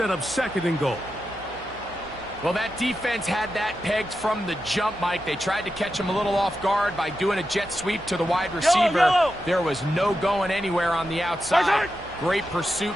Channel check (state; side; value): noise; right; hum, 20 dB below the sound